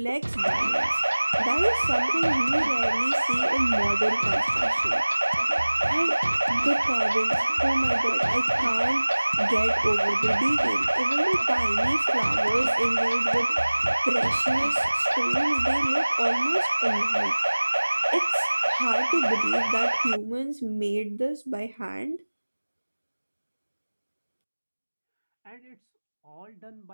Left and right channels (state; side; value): inverted; both; correlation -1.00